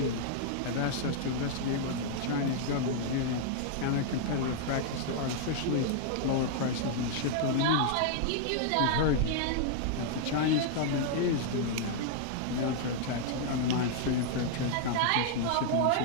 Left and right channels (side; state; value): both; different; correlation -0.01